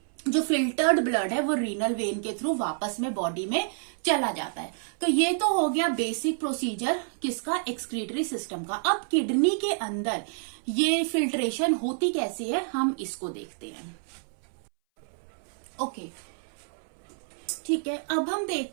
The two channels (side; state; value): left; silent; 59 dB below the other